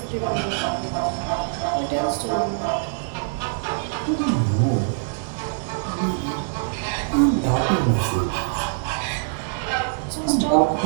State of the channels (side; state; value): left; silent; 61 dB below the other